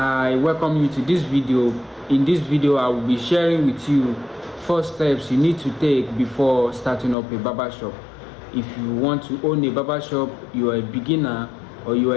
welcome you to this video. In this video I will be sharing with you 4 steps you need to take before starting up a barbershop. If you want to own a barbershop, you are a beginner or you are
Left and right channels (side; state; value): right; drops out; at 7.2 s